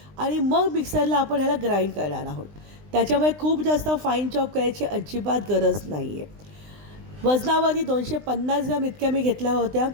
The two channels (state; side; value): late; left; 20 ms